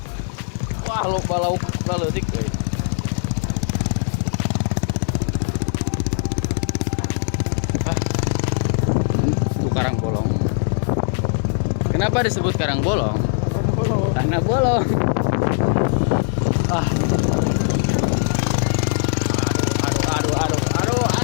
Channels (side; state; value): right; silent; 65 dB below the other